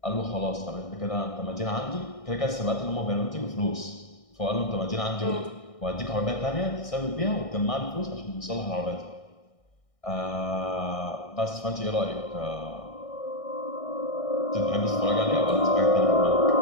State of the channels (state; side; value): late; right; 1.6 ms